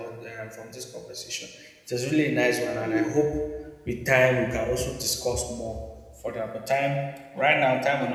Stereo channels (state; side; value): identical; both; correlation 1.00